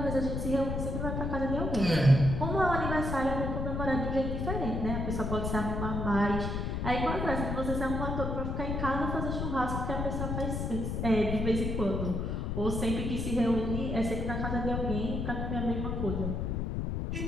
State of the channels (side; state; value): left; noise; rumble, 1 dB below the sound